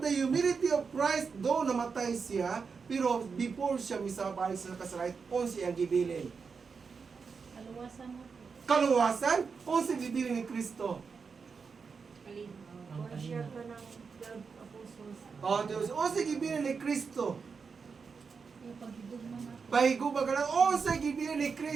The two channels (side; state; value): left; quieter; 5.4 dB